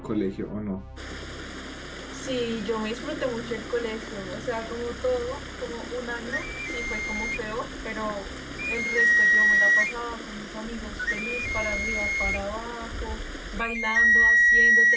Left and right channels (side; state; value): both; identical; correlation 1.00